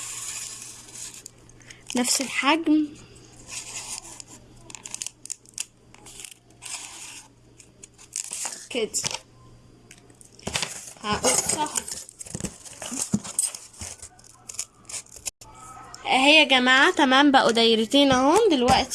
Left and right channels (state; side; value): identical; both; correlation 1.00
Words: نفس الحجم كده. هقصها اهي يا جماعه. تمام بقوا دايرتين اهم.